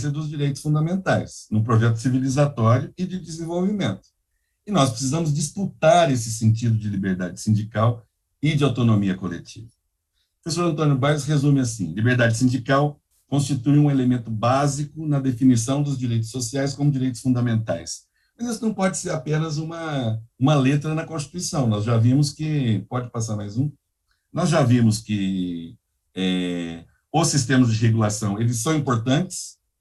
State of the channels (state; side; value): identical; both; correlation 1.00